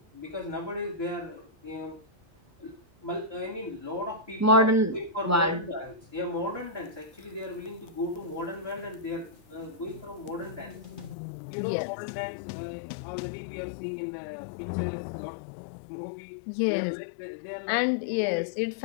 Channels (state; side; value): drops out; right; at 11.2 s